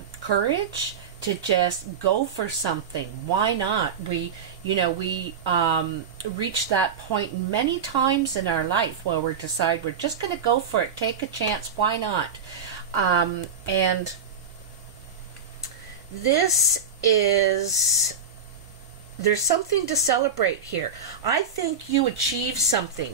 courage to just go for something. Why not? We reach that point many times in our life where we decide we're just going to go for it, take a chance. Why not? And this is, there's something to celebrate here. I think you achieved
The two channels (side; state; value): left; quieter; 5.5 dB